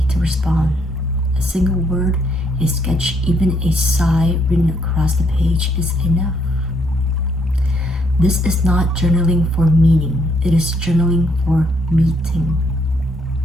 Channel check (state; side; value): normal; both; correlation 0.71